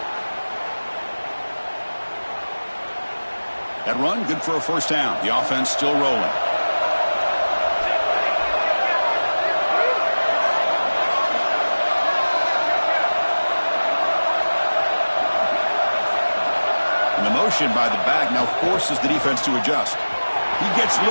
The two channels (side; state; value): both; inverted; correlation -1.00